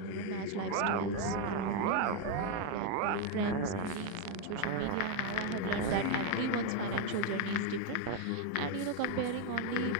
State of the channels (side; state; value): both; different; correlation 0.02